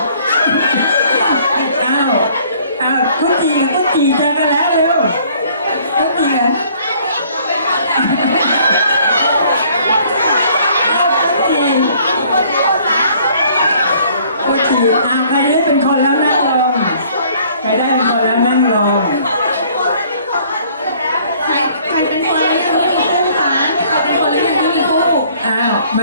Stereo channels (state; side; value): inverted; both; correlation -0.58